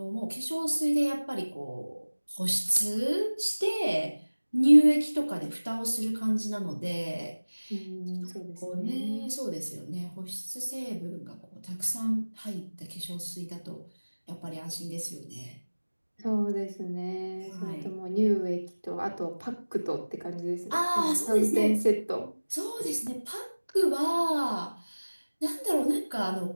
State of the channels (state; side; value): inverted; both; correlation -1.00